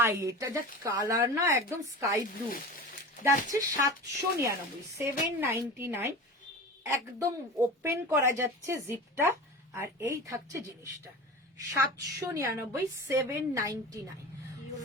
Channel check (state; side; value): normal; both; correlation 0.32